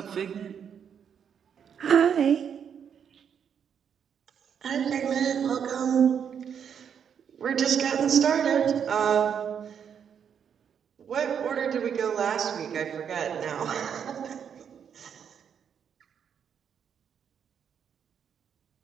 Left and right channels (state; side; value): quieter; left; 7.8 dB